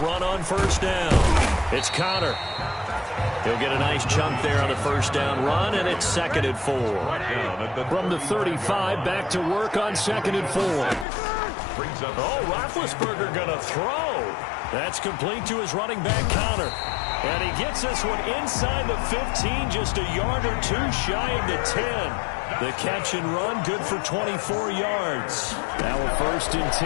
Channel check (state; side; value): drops out; right; at 11.1 s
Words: on first down. It's Connor. He'll get a nice chunk there on the first down run, and it's 2nd and 4. From the 35, back to work on 2nd and 4. Oh, Roethlisberger going to throw. That's complete to his running back, Connor. And he gets this one inside the 15, just a yard or two shy of the 10. The catch and run, good for 24 yards. Now a 1st and